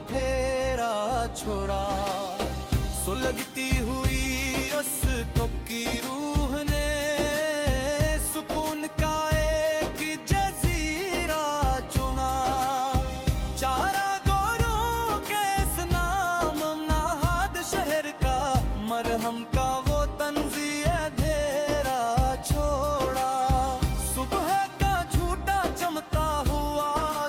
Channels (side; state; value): both; identical; correlation 1.00